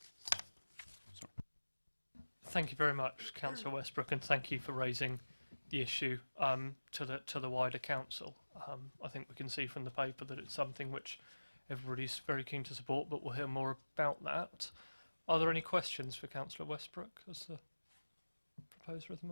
Thank you very much, Councillor Westbrook, and thank you for raising the issue to the wider council. I think we can see from the paper that it's something which everybody's very keen to support, but we'll hear more about that. Are there any questions for Councillor Westbrook as the proposer of the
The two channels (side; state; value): both; inverted; correlation -1.00